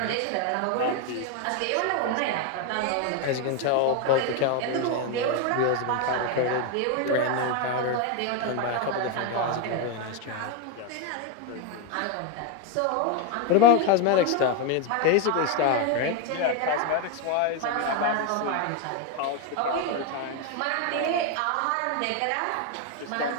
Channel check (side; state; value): both; different; correlation 0.02